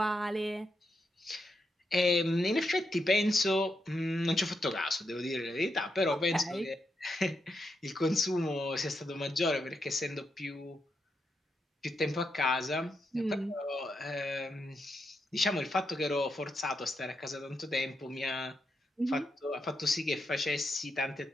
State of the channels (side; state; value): both; normal; correlation 0.83